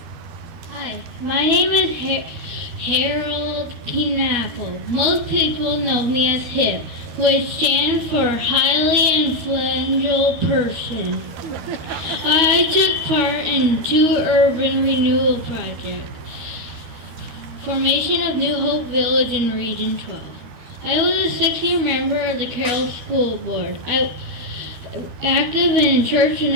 My name is Harold Knappel. Most people know me as HIP, which stands for Highly Influential Person. I took part in 2 urban renewal projects. Formation of New Hope Village in Region 12. I was a 6-year member of the Carroll School Board. I active in Church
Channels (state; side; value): late; left; 12 ms